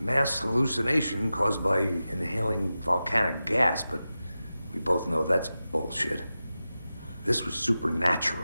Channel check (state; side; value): inverted; both; correlation -0.93